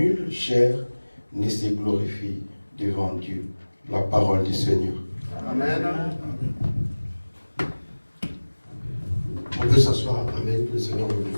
chair ne se glorifie devant Dieu. La parole du Seigneur. Amen. On peut s'asseoir. Amen. Que le Seigneur vous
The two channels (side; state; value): both; inverted; correlation -1.00